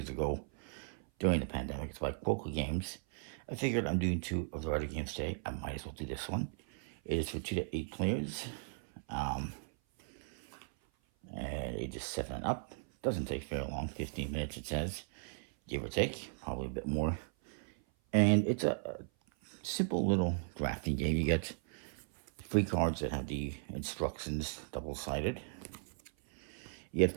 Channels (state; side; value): silent; left; 53 dB below the other